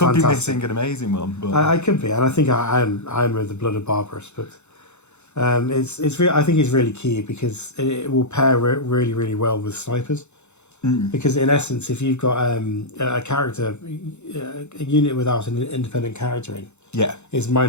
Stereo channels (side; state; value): right; late; 0.82 ms